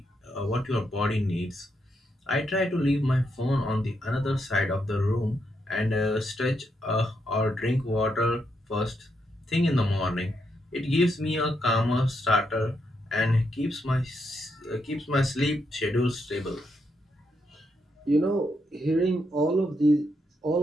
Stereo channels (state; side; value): normal; both; correlation 0.80